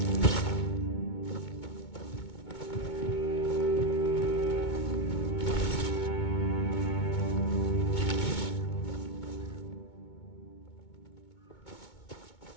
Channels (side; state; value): right; late; 2.2 ms